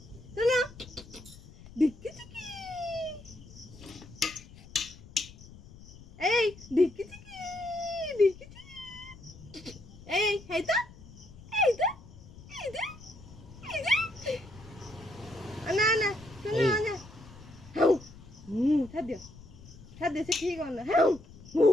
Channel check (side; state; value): left; noise; rumble, 19 dB below the sound